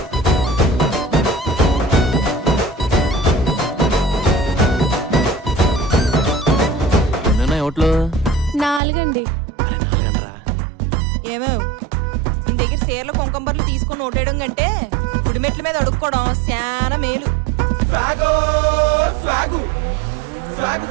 ఓట్లు 4 అండి. ఏమేవ్ నీ దగ్గర చీరలు కుంకంబర్లు తీసుకొని ఓటేయడం కంటే గుడిమెట్ల మీద అడుక్కోవడం చాలా మేలు.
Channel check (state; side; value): drops out; left; at 8.8 s